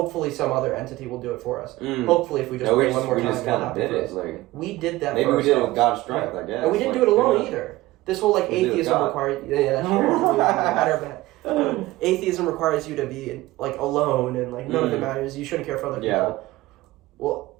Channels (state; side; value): quieter; left; 18.3 dB